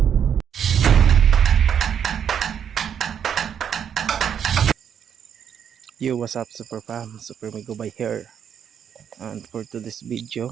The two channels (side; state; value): left; quieter; 8.3 dB